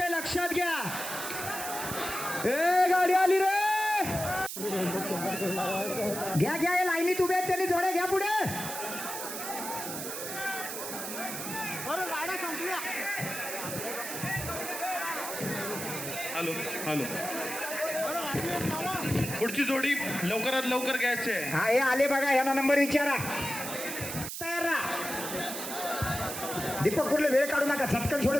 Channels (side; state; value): right; noise; hiss, 6 dB below the sound